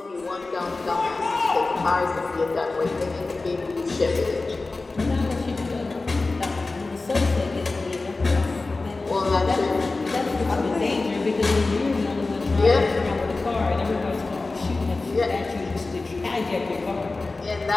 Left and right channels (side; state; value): right; quieter; 3.5 dB